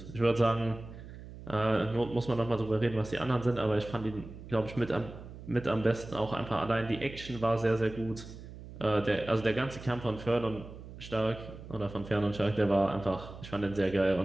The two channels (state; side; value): noise; right; hum, 14 dB below the sound